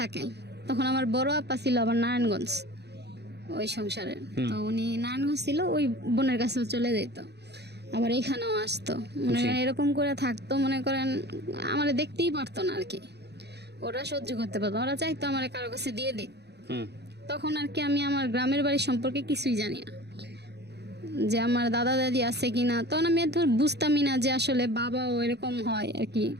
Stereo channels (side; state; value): left; late; 0.49 ms